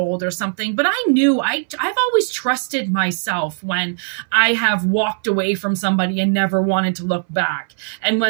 or something. But I knew I've always trusted myself when I have walked away from somebody and never wanted to look back. And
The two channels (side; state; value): left; silent; 61 dB below the other